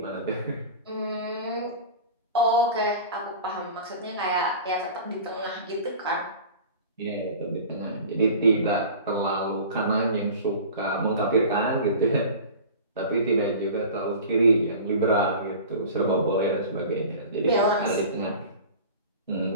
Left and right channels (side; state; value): both; inverted; correlation -0.37